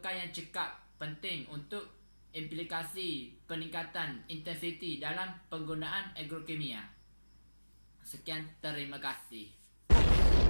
yang cekap penting untuk implikasi peningkatan intensiti dalam penggunaan agrokimia. Sekian, terima kasih.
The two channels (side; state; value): both; inverted; correlation -1.00